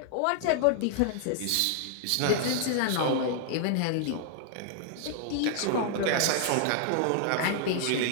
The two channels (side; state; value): both; different; correlation 0.00